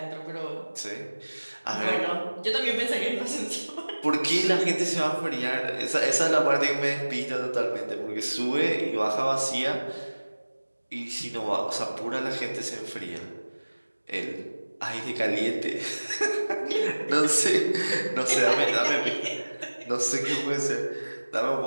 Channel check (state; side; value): inverted; both; correlation -1.00